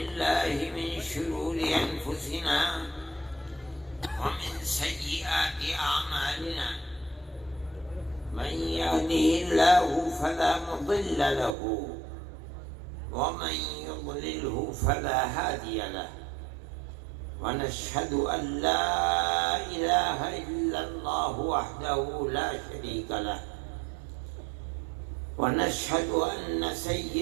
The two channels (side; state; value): left; drops out; at 11.6 s